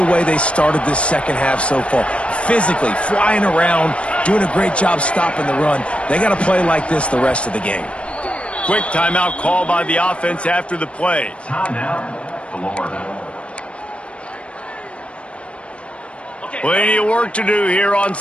way they started this second half so far. Physically, flying around, doing a great job stopping the run. They got to play like this the rest of the game. Quick timeout call by the offense after the play. Timeout, Florida. Plenty of work to do here on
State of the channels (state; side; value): late; right; 0.060 ms